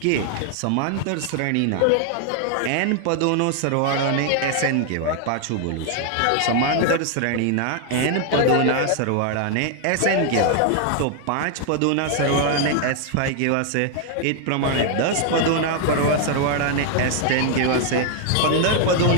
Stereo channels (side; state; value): both; different; correlation 0.00